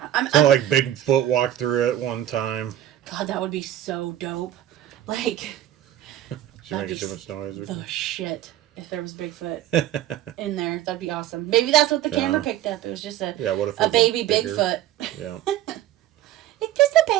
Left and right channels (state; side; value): quieter; left; 12.7 dB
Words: it's not like Bigfoot walked through it one time. God, that would be so dope. Like, She's making too much noise. The shit. If there was Bigfoot in there, that'd be awesome. Maybe that's what the camera picked up. It was just a baby Bigfoot. Yeah. It's just a